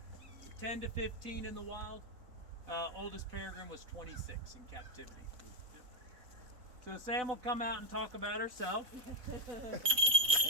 10 to 15 in the wild. Oldest peregrine was 26 in captivity. Yep. So Sam will come out and talk about herself.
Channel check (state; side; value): late; left; 3.9 ms